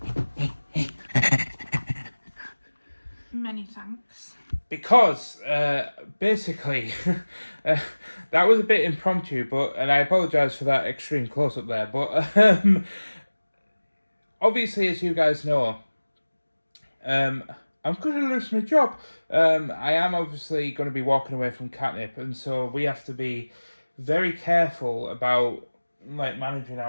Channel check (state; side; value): inverted; both; correlation -1.00